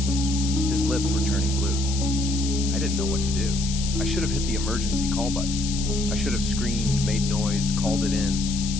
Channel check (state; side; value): noise; left; hiss, 7 dB below the sound